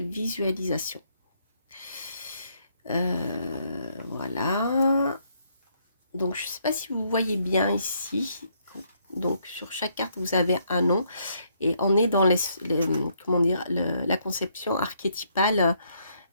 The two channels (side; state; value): both; inverted; correlation -0.72